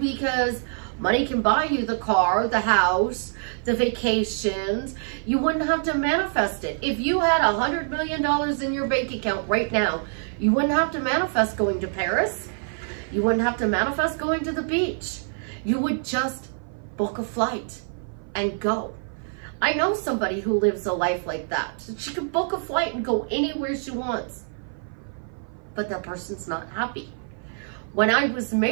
money can buy you the car, the house, the vacations. You wouldn't have to manifest it. If you had $100 million in your bank account right now, you wouldn't have to manifest going to Paris. You wouldn't have to manifest going to the beach. You would just book a flight and go. I know somebody who lives a life like that. She can book a flight and go anywhere she wants, but that person's not happy. When I was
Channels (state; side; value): silent; left; 55 dB below the other